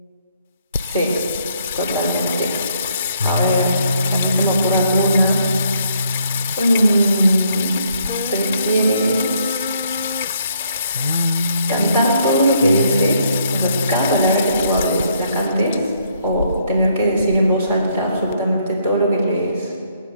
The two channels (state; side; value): inverted; both; correlation -0.70